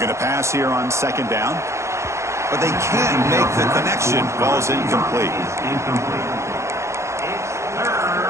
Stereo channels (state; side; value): late; left; 0.14 ms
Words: to pass here on second down, but they can't make the connection. Ball's incomplete.